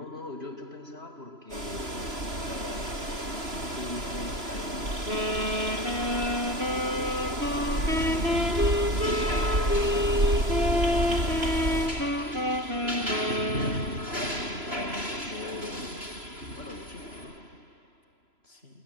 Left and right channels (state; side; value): late; left; 3.0 ms